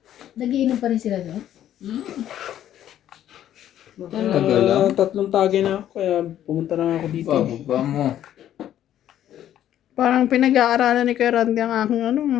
Nagiinom pa rin sila doon? Tagal lang. Tatlong tagay na ako, kaya pumunta lang ako dito. Bababa mo. Parang pinag-aaralan ni Kuya Randy ang aking ano.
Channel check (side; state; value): right; quieter; 11.4 dB